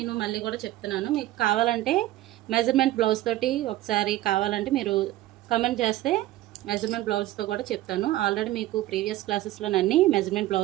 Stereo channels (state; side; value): quieter; left; 15.6 dB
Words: మళ్ళీ కూడా చెప్తున్నాను. మీకు కావాలంటే మెజర్మెంట్ బ్లౌజ్ తోటి ఒకసారి కావాలంటే మీరు కమెంట్ చేస్తే మెజర్మెంట్ బ్లౌజ్తో కూడా చెప్తాను. ఆల్రెడీ మీకు ప్రీవియస్ క్లాసెస్లో అన్ని మెజర్మెంట్